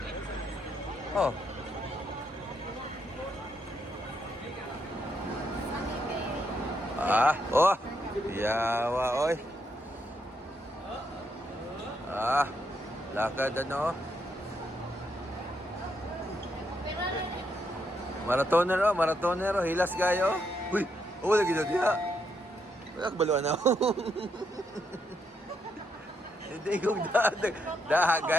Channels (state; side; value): normal; both; correlation 0.78